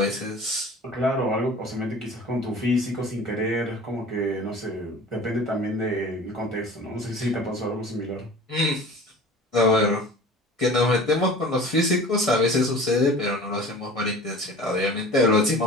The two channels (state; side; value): normal; both; correlation 0.42